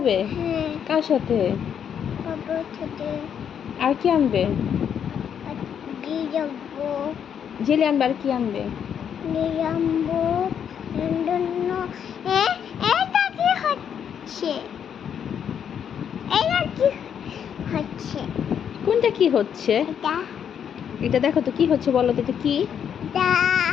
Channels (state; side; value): quieter; right; 8.3 dB